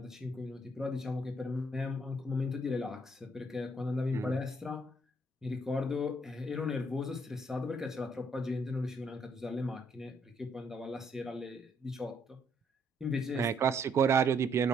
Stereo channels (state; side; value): normal; both; correlation 0.70